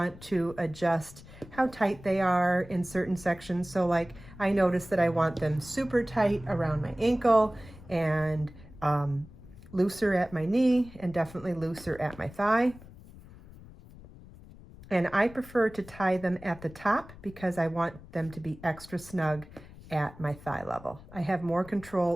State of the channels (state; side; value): noise; left; rumble, 19 dB below the sound